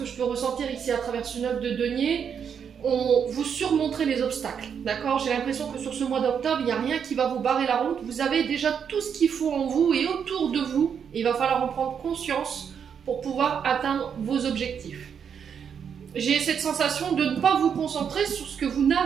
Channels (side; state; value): left; quieter; 7.4 dB